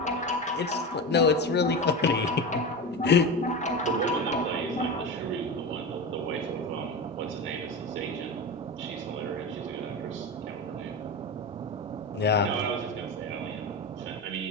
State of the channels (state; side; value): normal; both; correlation 0.23